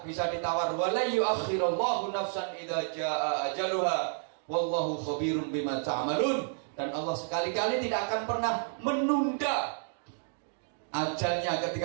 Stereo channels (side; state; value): left; silent; digital silence